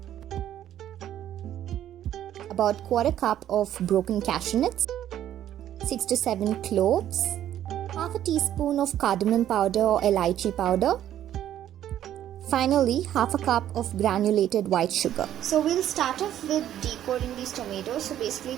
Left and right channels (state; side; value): quieter; left; 11.4 dB